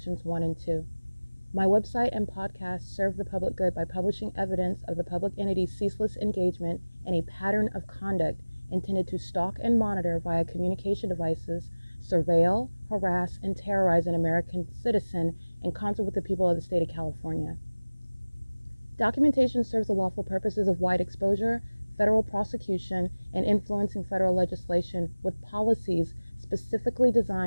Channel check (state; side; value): inverted; both; correlation -1.00